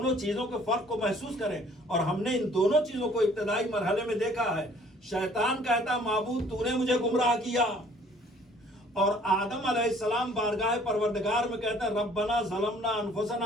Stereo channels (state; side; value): normal; both; correlation 0.56